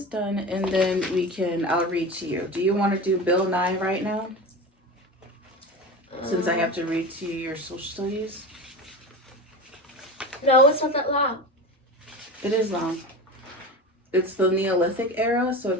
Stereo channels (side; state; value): both; normal; correlation 0.28